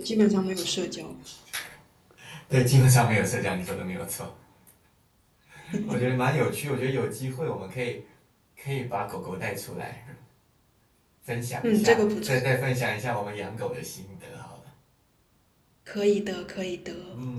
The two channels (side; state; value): both; identical; correlation 1.00